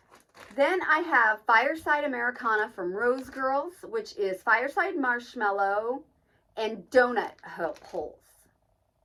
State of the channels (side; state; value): both; identical; correlation 1.00